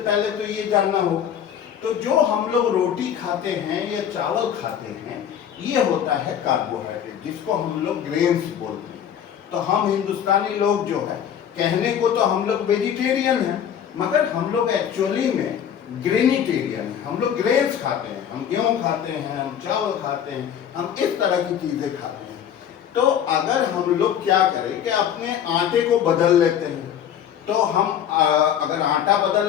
पहले तो ये जानना होगा। तो जो हम लोग रोटी खाते हैं या चावल खाते हैं, ये होता है कार्बोहाइड्रेट, जिसको हम लोग ग्रेन्स बोलते हैं। तो हम हिंदुस्तानी लोग जो है, कहने को तो हम लोग वेजिटेरियन हैं, मगर हम लोग एक्चुअली में ग्रेनिटेरियन है। हम लोग ग्रेन्स खाते हैं, हम गेहूं खाते हैं, हम चावल खाते हैं, हम इस तरह की चीजें खाते हैं। तो अगर हम लोग क्या करें कि अपने आटे को बदल लेते हैं, तो हम अगर आटा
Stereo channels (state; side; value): quieter; right; 9.1 dB